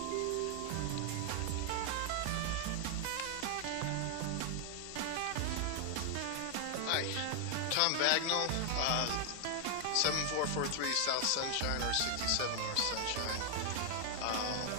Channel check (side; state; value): both; different; correlation 0.00